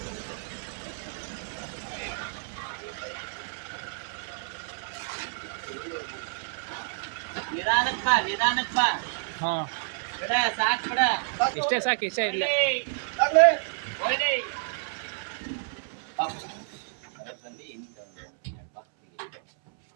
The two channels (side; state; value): left; silent; 58 dB below the other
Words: ನಿಧಾನಕ್ಕೆ ಬಾ ಹಾಂ, ಬಿಡ ಸಾಕು ಬಿಡ ಇಷ್ಟೇ ಸಾಕು, ಇಷ್ಟೇ ಇಲ್ಲ.